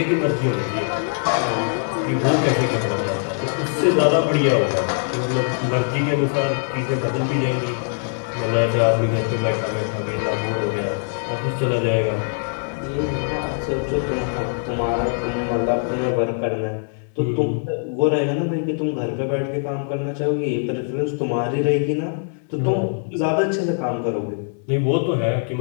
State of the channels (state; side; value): silent; right; 64 dB below the other